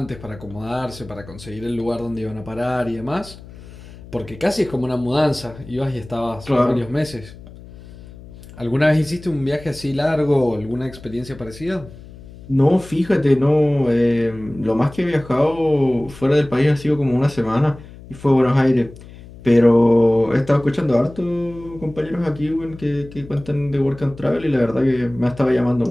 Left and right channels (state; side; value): noise; left; hum, 18 dB below the sound